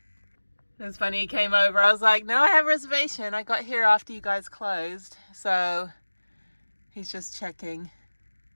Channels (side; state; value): both; inverted; correlation -1.00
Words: It was funny, he came over. I was like, no, I have a reservation. I got here after you guys closed. So he's just checking.